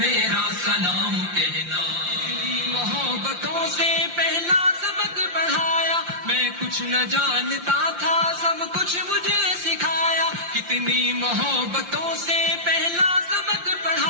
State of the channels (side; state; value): left; late; 5.7 ms